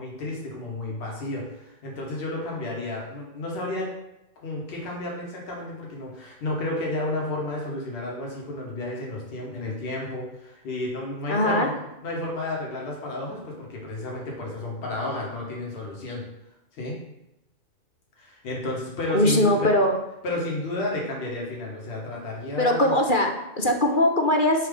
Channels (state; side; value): late; right; 2.4 ms